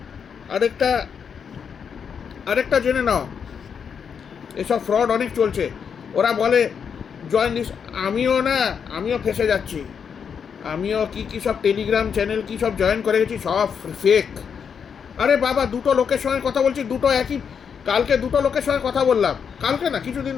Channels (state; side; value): quieter; right; 6.9 dB